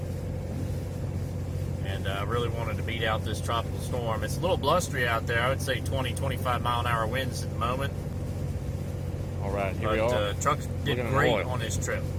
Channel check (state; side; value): identical; both; correlation 1.00